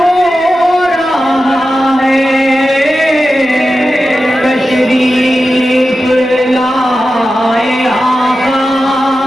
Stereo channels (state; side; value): normal; both; correlation 0.92